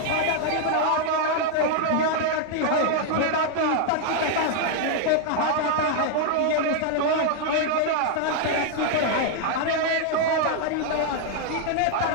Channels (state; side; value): different; both; correlation 0.00